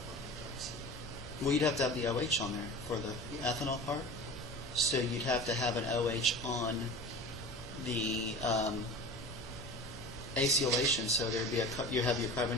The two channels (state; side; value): normal; both; correlation 0.35